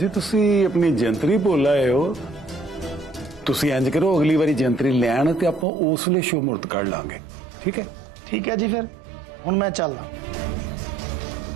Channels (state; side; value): drops out; left; at 5.7 s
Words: तुसी अपनी जंतरी भुल आए हो, तुसी इंज करो अगली बारी जंतरी ले आना ते आपां उस वेले शुभ मुहूर्त कढ लांगे, ठीक है? ठीक है जी, फिर हुण मैं चलदा।